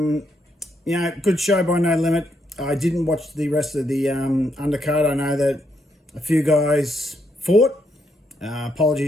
show by No Limit. I didn't watch the rest of the undercard. I know that a few guys fought.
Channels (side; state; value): both; normal; correlation 0.77